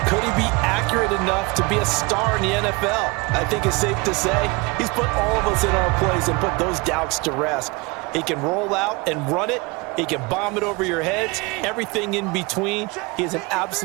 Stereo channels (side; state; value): left; quieter; 26.5 dB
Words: could he be accurate enough to be a star in the NFL? I think it's safe to say he's put all of us in our place and put those doubts to rest. He can roll out and run it. He can bomb it over your heads, everything in between. He is an